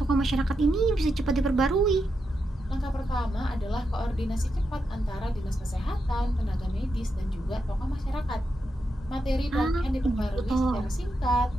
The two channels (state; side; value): normal; both; correlation 0.85